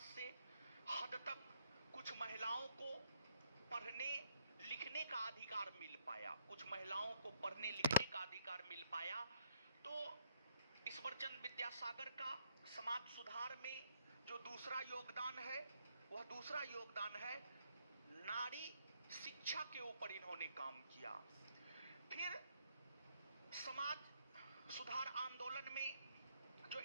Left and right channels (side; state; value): both; inverted; correlation -0.70